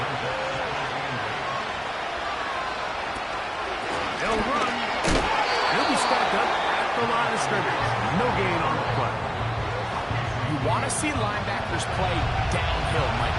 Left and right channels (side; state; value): both; identical; correlation 1.00